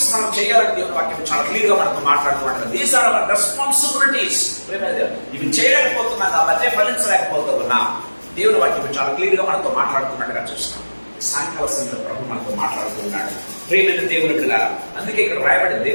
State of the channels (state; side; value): inverted; both; correlation -1.00